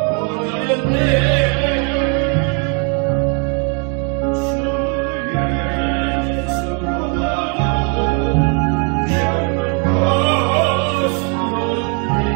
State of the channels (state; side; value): quieter; left; 37.7 dB